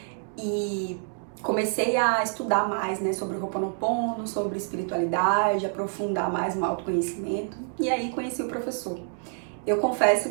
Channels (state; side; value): silent; left; 60 dB below the other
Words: E comecei a estudar mais, né, sobre o Ho'oponopono, sobre espiritualidade, aprofundar mais no autoconhecimento. E aí conheci o professor. Eu confesso